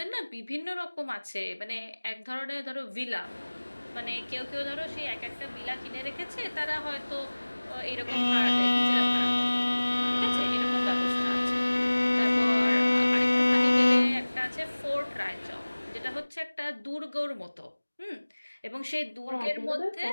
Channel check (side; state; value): both; inverted; correlation -1.00